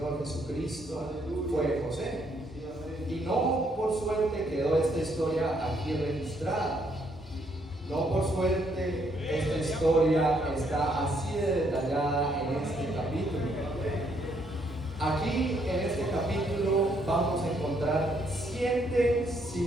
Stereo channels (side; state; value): both; normal; correlation 0.71